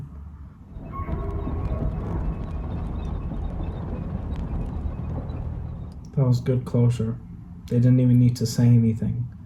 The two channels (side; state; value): both; identical; correlation 1.00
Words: That was good closure. They didn't even need to say anything.